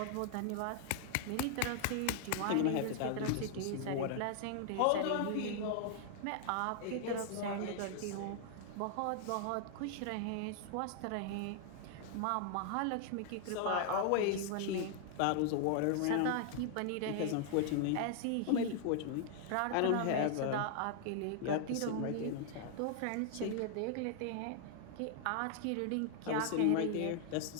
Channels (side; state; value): both; different; correlation 0.00